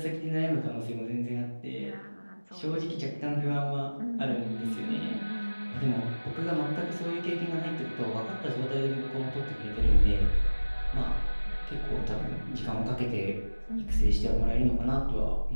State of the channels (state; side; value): inverted; both; correlation -1.00